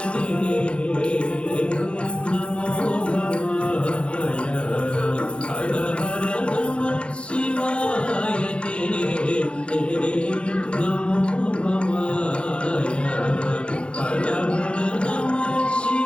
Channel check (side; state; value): right; late; 0.058 ms